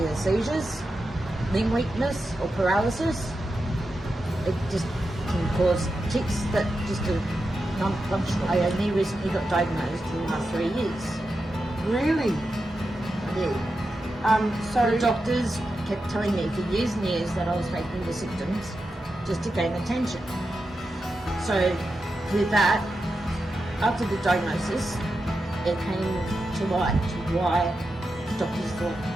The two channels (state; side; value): normal; both; correlation 0.89